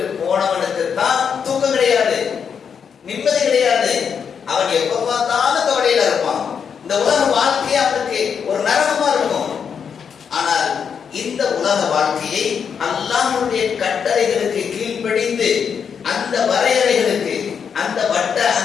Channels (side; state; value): right; quieter; 6.9 dB